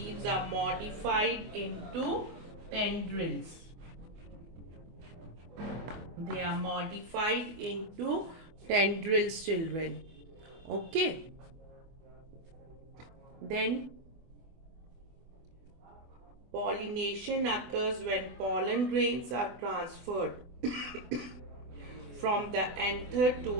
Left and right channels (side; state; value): left; late; 24 ms